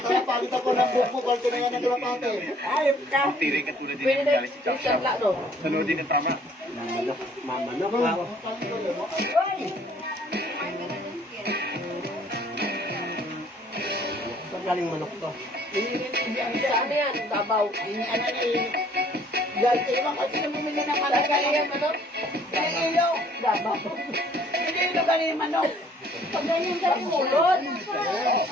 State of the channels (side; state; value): both; normal; correlation 0.59